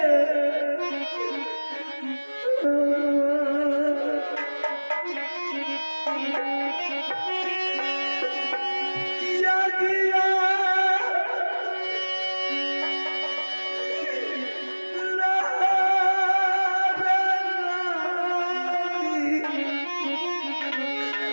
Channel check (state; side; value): inverted; both; correlation -1.00